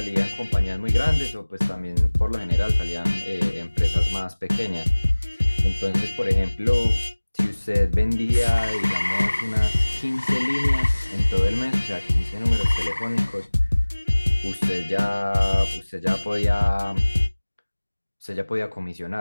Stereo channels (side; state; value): both; inverted; correlation -1.00